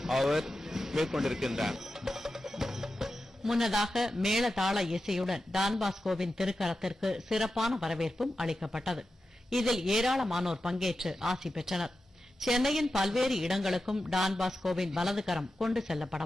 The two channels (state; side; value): normal; both; correlation 0.91